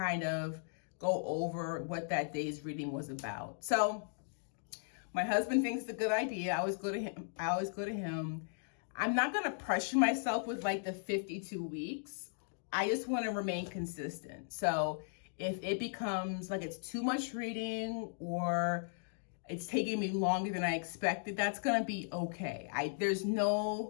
of go over what that day's reading was about. So my husband thinks it's a good idea. I always go to him. I'm not going to pressure myself with like the 52 weeks. I just want to remain consistent. So if it becomes like it's too much reading or it's taking me longer than I expected, that's going to be okay. There's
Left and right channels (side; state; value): right; silent; digital silence